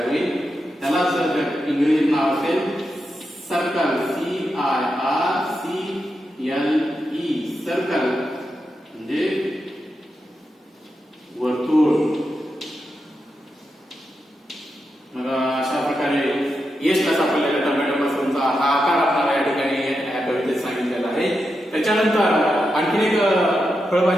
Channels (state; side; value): normal; both; correlation 0.87